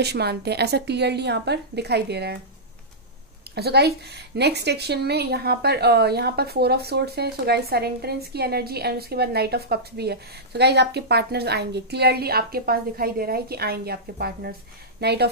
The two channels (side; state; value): both; normal; correlation -0.13